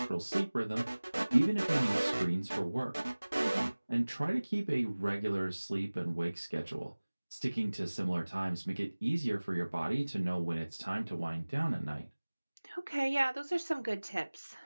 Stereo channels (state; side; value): inverted; both; correlation -1.00